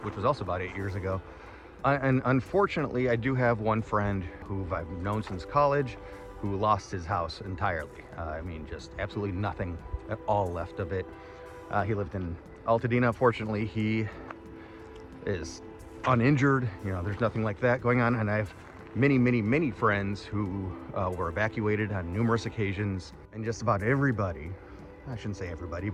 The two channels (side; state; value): both; identical; correlation 1.00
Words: which was also about 8 years ago. And unfortunately, I do have one friend who I've known since college who lost his house entirely. I mean, just absolutely nothing at all left of it. He lived in Altadena. Fortunately, he is uninjured. You know, there's nothing like that going on. And I have many friends who were evacuated on numerous occasions. And just about everybody, I shouldn't say everybody,